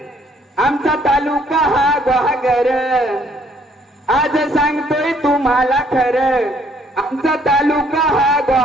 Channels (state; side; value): normal; both; correlation 0.64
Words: आमचा तालुका हा ग्वागर आज सांगतोय तुम्हाला खरं आमचा तालुका हा